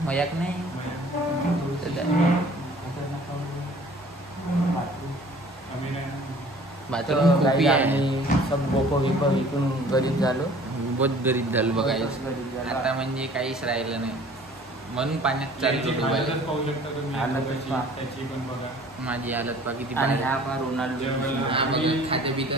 मजाक नाही. बाथरूम खूप आहे. सब बोको विको विकून गरीब झालो. बहुत गरीब झालो बघायचं आता, म्हणजे काहीच राहिलं नाही. म्हणून पाण्यात चालतो डुबायला. माझी हालत पा किती खाते पितं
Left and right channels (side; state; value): both; normal; correlation 0.50